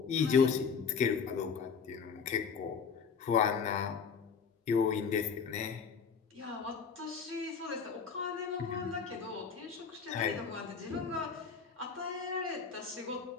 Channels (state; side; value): quieter; right; 6.0 dB